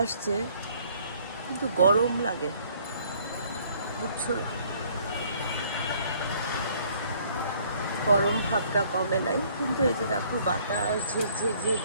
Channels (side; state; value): both; inverted; correlation -0.60